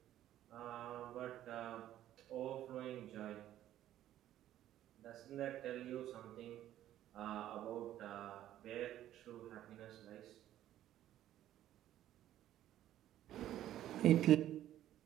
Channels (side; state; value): left; quieter; 12.6 dB